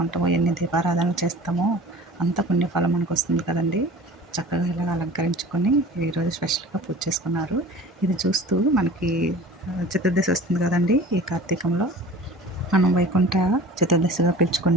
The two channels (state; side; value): normal; both; correlation 0.42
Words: ఎన్ని దీపారాధనలు చేస్తామో అంత పుణ్యఫలం మనకు వస్తుంది కదండి. చక్కగా ఇలాగ అలంకరించుకొని ఈరోజు స్పెషల్గా పూజ చేసుకున్నారు. ఇది చూస్తూ మనకి చతుర్దశి వస్తుంది కదండి. ఈ కార్తీకంలో మనం వైకుంఠ చతుర్దశిగా